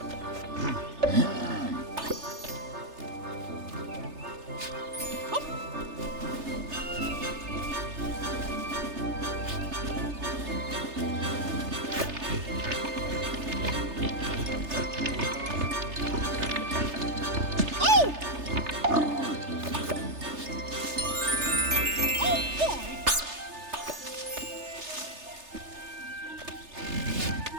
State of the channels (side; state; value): left; late; 3.3 ms